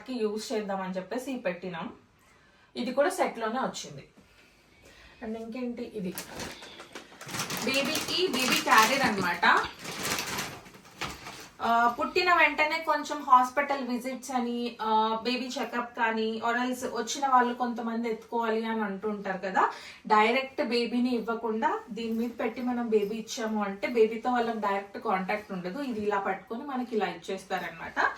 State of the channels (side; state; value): both; identical; correlation 1.00